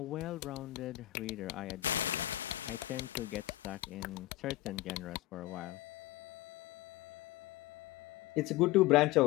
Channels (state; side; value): quieter; right; 16.6 dB